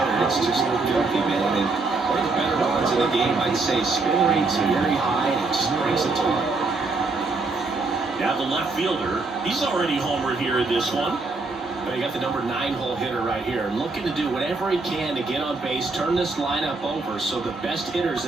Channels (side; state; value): left; quieter; 3.7 dB